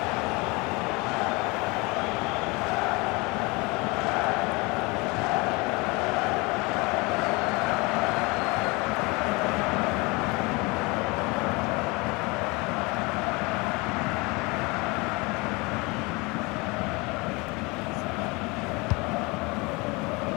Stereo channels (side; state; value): right; quieter; 26.1 dB